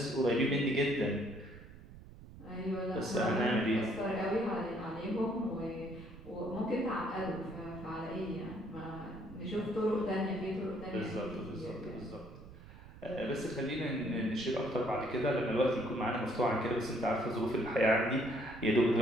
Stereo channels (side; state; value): right; noise; rumble, 17 dB below the sound